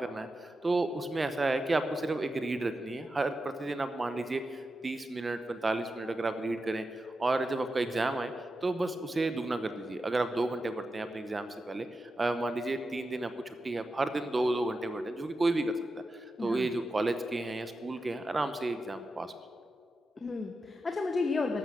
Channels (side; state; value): both; normal; correlation 0.89